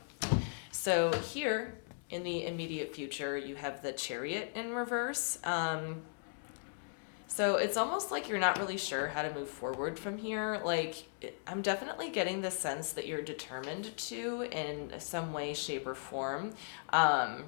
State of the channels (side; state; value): right; silent; digital silence